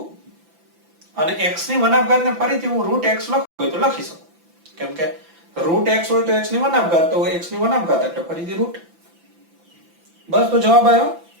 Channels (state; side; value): late; left; 5.9 ms